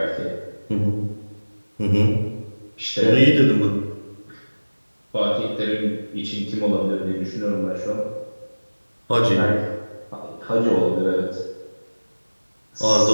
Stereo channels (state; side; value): inverted; both; correlation -1.00